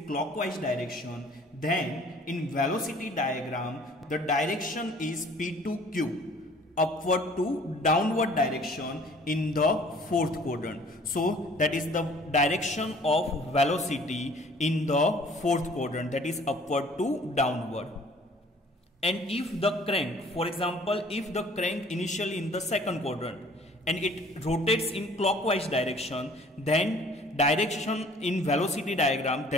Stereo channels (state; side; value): normal; both; correlation 0.53